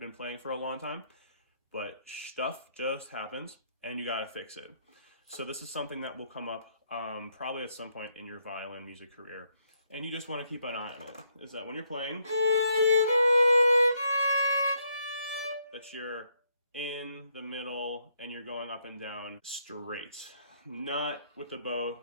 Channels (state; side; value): inverted; both; correlation -0.73